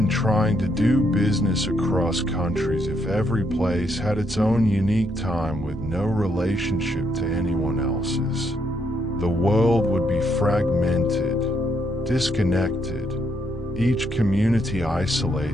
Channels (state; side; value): normal; both; correlation 0.75